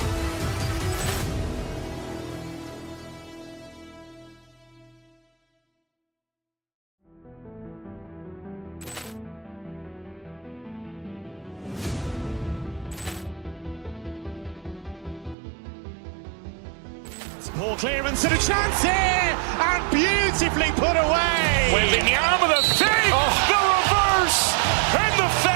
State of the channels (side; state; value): left; drops out; at 15.4 s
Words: Ball clearance and a chance here, and beautifully put away. Wembanyama the fake, the reverse, and the